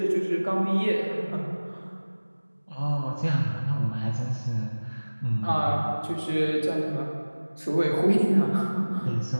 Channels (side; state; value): both; inverted; correlation -1.00